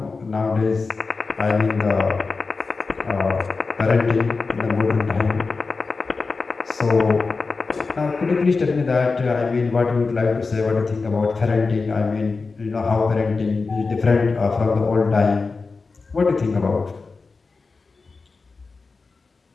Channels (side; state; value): right; quieter; 4.2 dB